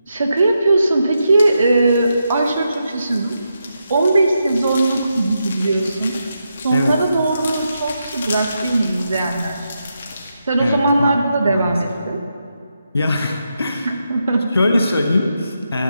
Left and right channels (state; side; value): inverted; both; correlation -0.84